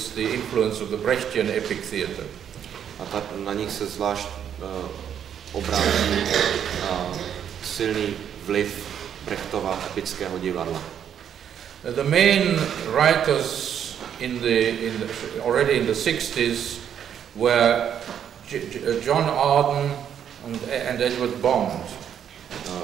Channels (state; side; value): quieter; left; 8.9 dB